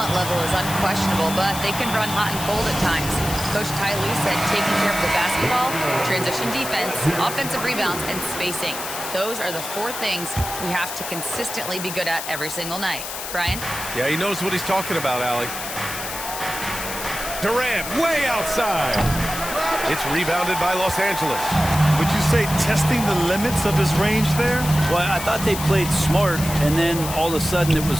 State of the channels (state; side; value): noise; left; hiss, 7 dB below the sound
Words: level is unquestionable, but they can run hot and cold at times. Coach Ty Lue said taking care of the basketball, transition defense, offensive rebounds, and spacing. Those are the 4 things we have to consistently be good at every single night. Brian? Yeah, he knows what he's talking about, Allie. Durant way outside. It's rebounded by Los Angeles. Would you say testing the limits of his range there? Well, I thought they played smart, and then all of a sudden it was